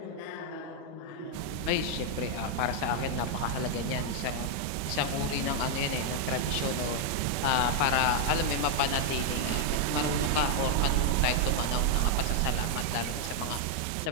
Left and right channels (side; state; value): both; different; correlation 0.00